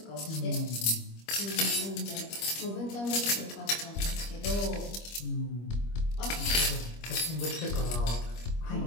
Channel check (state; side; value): late; right; 25 ms